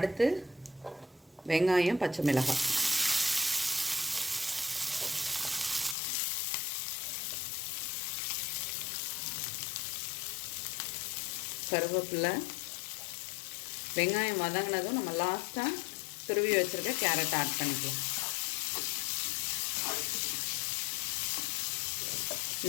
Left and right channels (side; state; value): right; drops out; at 6.0 s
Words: வெங்காயம், பச்சை மிளகாய், கருவேப்பிலை. வெங்காயம் வதங்கினதும் நம்ம லாஸ்ட்டாக துருவி வச்சுருக்க கேரட் ஆட் பண்ணிக்கலாம்.